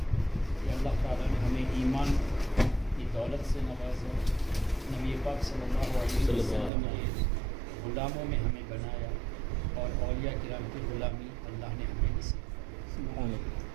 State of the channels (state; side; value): drops out; left; at 6.7 s